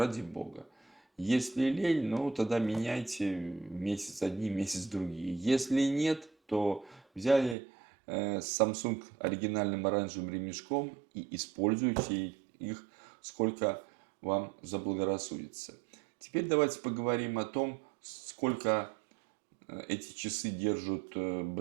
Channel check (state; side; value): drops out; left; at 7.6 s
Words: бога. Если лень, ну тогда меняйте месяц одни, месяц другие. Если нет, то взяли Samsung оригинальным оранжевым ремешком и используйте их сколько вам заблагорассудится. Теперь давайте поговорим о том, сколько эти часы держат